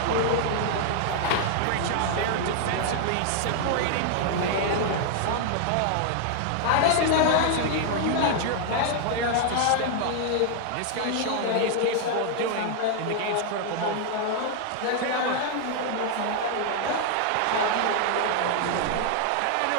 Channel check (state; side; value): different; both; correlation 0.00